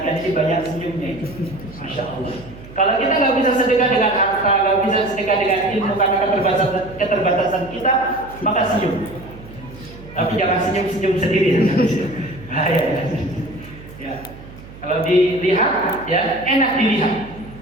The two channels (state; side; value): noise; right; hum, 17 dB below the sound